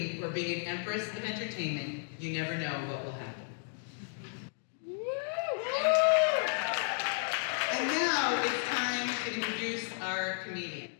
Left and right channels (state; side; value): silent; right; 56 dB below the other